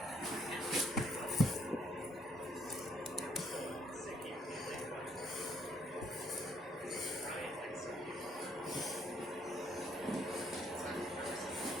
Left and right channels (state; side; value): normal; both; correlation 0.68